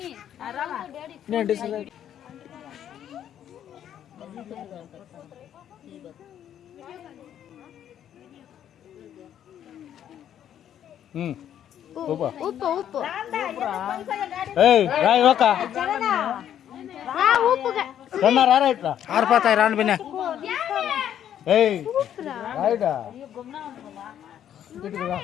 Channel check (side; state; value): right; quieter; 10.2 dB